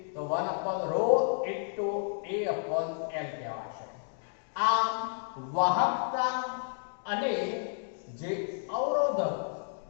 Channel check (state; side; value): silent; right; digital silence